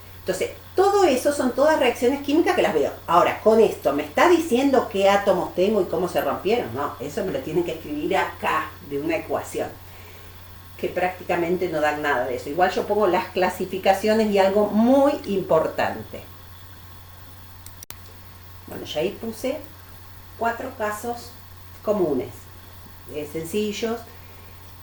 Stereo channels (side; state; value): both; identical; correlation 1.00